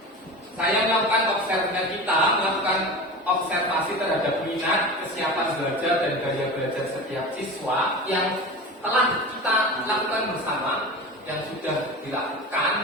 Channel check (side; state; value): both; normal; correlation 0.30